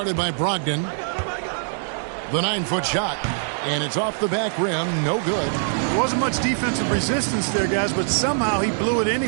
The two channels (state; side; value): silent; left; digital silence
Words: by Brogdon. The 9-foot shot, and it's off the back rim. No good. There wasn't much defensive resistance there, guys, but somehow he blew it